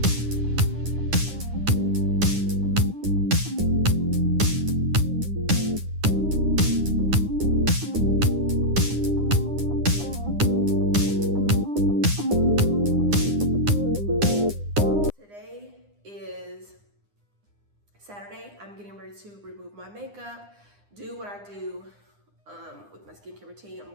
Today is Saturday. I'm getting ready to remove my makeup, do what I do with my skincare routine. I'm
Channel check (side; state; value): left; late; 9.8 ms